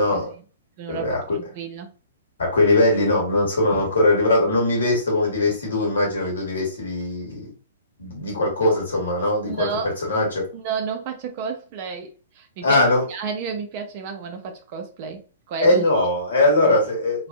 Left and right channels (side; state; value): both; inverted; correlation -0.55